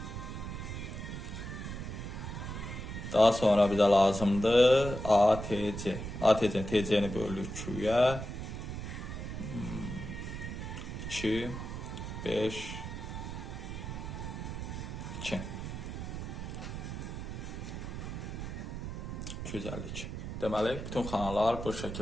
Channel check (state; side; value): noise; right; rumble, 6 dB below the sound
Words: Daha sonra bize lazımdır ATC. ATC, TC'ni bölürük Q'ya. 2, 5, 2. 252. Deməli, bütün kanallar bu